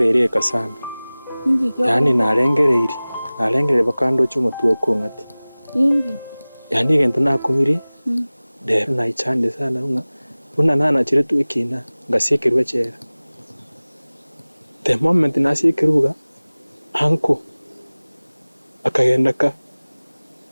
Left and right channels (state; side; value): inverted; both; correlation -0.99